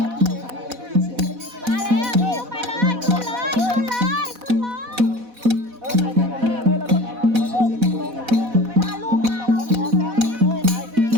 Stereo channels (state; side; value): late; left; 4.1 ms